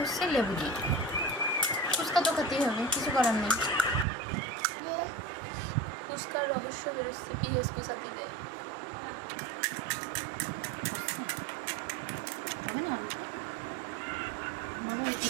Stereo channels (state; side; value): drops out; left; at 4.0 s